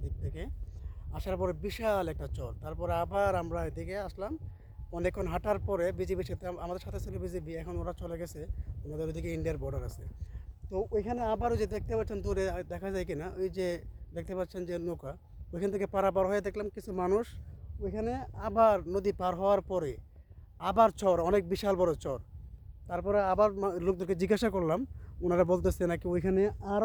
দিক থেকে আসার পরে বিশাল একটা চর, তারপরে আবার আমরা এদিকে আসলাম। অনেকক্ষণ হাঁটার পরে বিজিবির সাথে, আমাদের সাথে ছিল বিজিবি, এখন ওরা চলে গেছে। ওনাদের ওইদিকে ইন্ডিয়ার বর্ডার আছে। তো ওইখানে আবার ওই যে দেখতে পাচ্ছেন দূরে, দেখা যায় কিনা, ওই যে দেখতে পাচ্ছেন যে নৌকা, ওইখান থেকে পারাপার হয়ে দেখলাম কিছু মানুষ ওইখানে। আবার নদী পার হওয়ার পরে আবার চর, অনেক বিশাল বড় চর। তারপরে আবার লোকদেরকে জিজ্ঞাসা করলাম, ওনারা বলতেছে নাকি ওইখানে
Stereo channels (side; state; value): both; identical; correlation 1.00